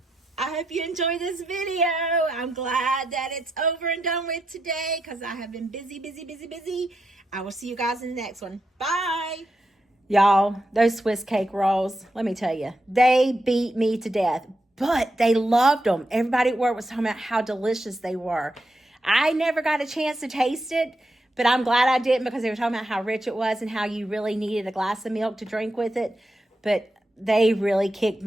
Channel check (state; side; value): normal; both; correlation 0.84